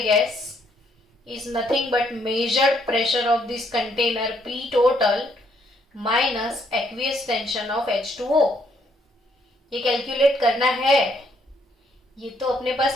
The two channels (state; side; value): normal; both; correlation 0.70